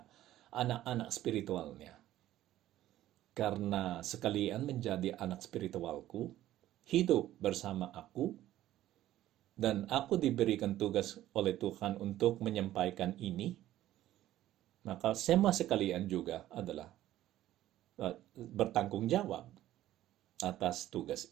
anak-anak spiritualnya. Karena sekalian menjadi anak spiritualku, hidup bersama aku, dan aku diberikan tugas oleh Tuhan untuk menyampaikan ini, maka semua sekalian juga adalah bertanggung jawab atas tugas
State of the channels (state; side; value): quieter; left; 13.8 dB